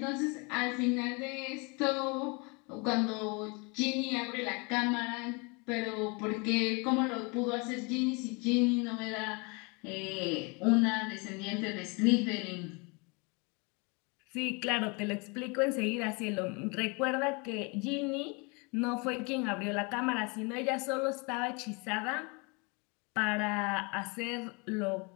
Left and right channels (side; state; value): right; quieter; 30.4 dB